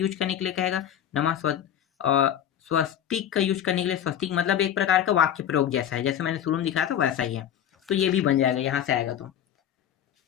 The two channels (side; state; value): right; quieter; 10.0 dB